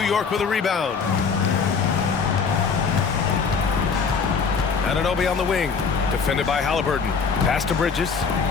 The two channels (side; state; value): right; quieter; 5.5 dB